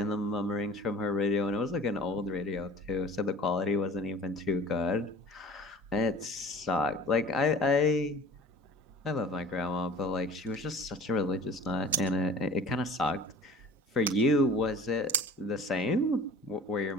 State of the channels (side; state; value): both; normal; correlation 0.44